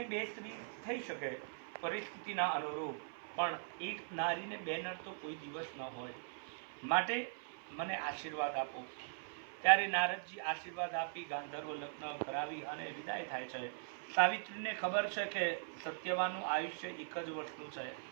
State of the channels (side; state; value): left; silent; 51 dB below the other